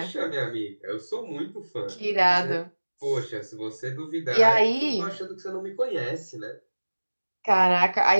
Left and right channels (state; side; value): inverted; both; correlation -1.00